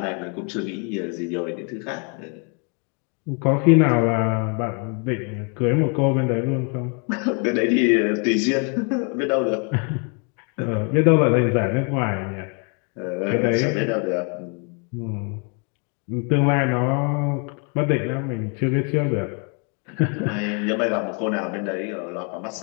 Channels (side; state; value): right; quieter; 37.6 dB